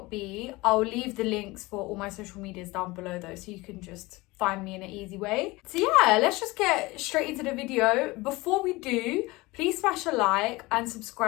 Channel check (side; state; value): right; quieter; 21.9 dB